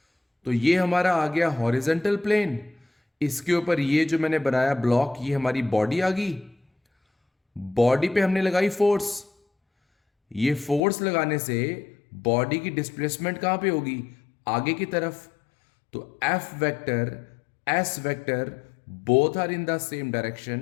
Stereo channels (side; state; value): right; drops out; at 10.8 s